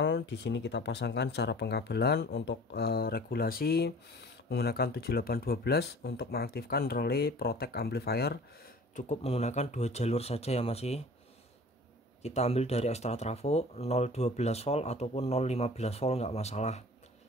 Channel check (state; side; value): normal; both; correlation 0.45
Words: Di sini kita pasangkan cara pengkabelan. Untuk regulasi menggunakan 7812. Untuk mengaktifkan relay protect amplifier cukup menggunakan 2 jalur saja ya masih. Kita ambil dari ekstra trafo 012 volt ataupun 015 volt nggak masalah.